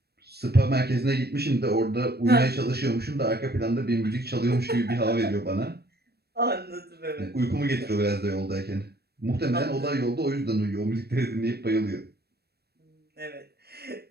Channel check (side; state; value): left; late; 0.47 ms